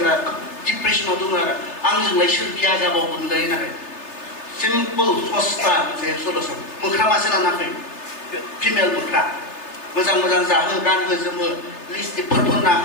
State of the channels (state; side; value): late; right; 3.3 ms